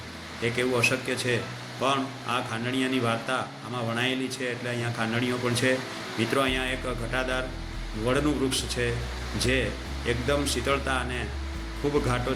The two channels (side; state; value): both; identical; correlation 1.00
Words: એક એવું અશક્ય છે, પણ આ ખાંડણીયાની વાર્તા આમાં વણાયેલી છે એટલે અહીંયા ખાંડણીઓ પણ છે મિત્રો. અહીંયા એક ઘટાદાર વડનું વૃક્ષ છે જે એકદમ શીતળતા અને ખૂબ ઘાટો